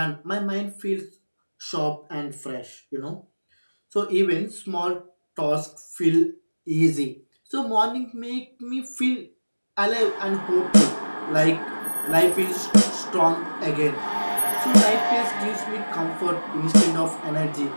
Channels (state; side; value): inverted; both; correlation -1.00